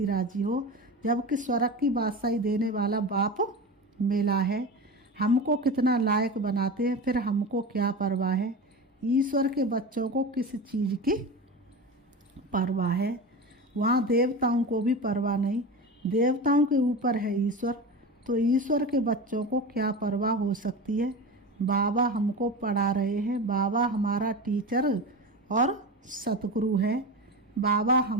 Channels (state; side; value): normal; both; correlation 0.27